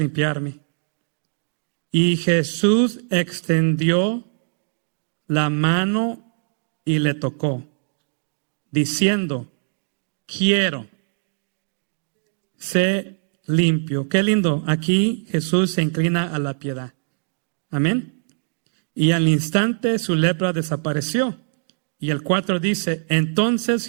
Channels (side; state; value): left; silent; digital silence